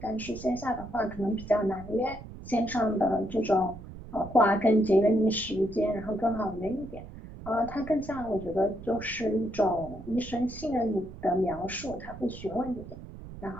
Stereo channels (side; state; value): right; noise; rumble, 14 dB below the sound